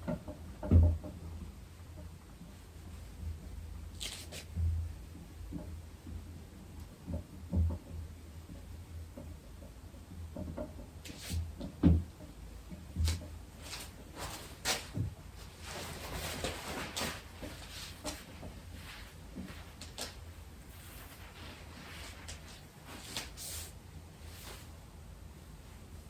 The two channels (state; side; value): identical; both; correlation 1.00